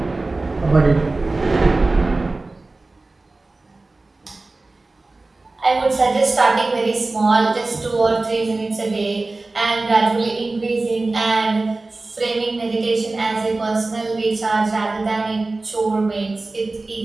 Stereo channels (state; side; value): quieter; left; 3.3 dB